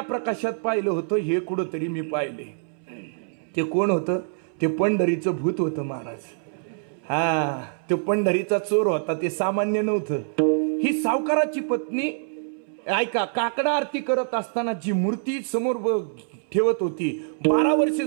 प्रकाशात पाहिलं होतं, हे कुठंतरी मी पाहिले. ते कोण होतं? ते पंढरीचं भूत होतं महाराज. हा, तो पंढरीचा चोर होता, ते सामान्य नव्हतं. ही सावकाराची पत्नी, ऐका, काकडा आरती करत असताना जी मूर्ती समोर ठेवत होती, 12 वर्ष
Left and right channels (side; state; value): left; silent; 62 dB below the other